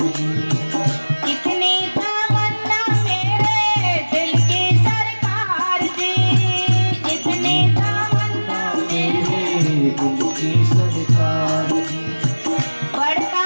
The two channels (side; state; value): both; inverted; correlation -1.00